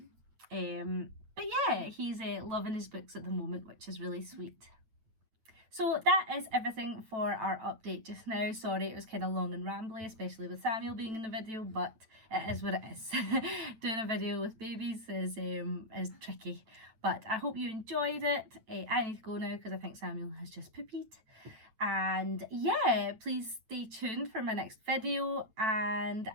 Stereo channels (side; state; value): left; late; 9.1 ms